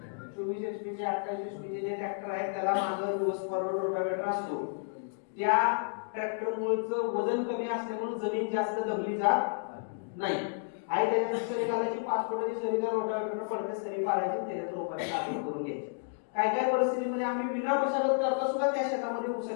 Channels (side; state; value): right; silent; digital silence